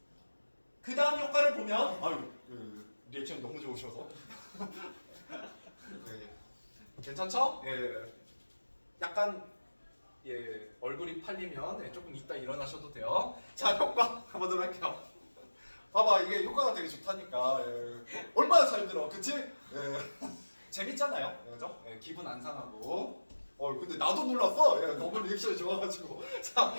그 다음 효과를 보면 리액션 너무 좋으셔서 네. 괜찮죠? 예. 약간 얼굴이 팔리면 조금 이따 일어나셔도 돼요. 자, 효과 가보도록 할게요. 봐봐, 이게 효과가 되게 좋다니까. 예. 얼마나 잘 들어, 그치? 예. 재밌잖아요, 그죠? 예, 기분 안 상하고. 근데 나도 놀랐어. 예, 너무 리액션이 좋아가지고. 자,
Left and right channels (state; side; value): inverted; both; correlation -1.00